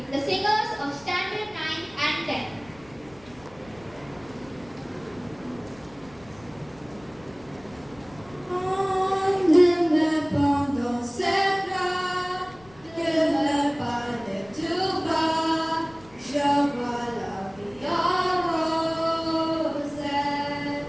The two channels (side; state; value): left; noise; rumble, 24 dB below the sound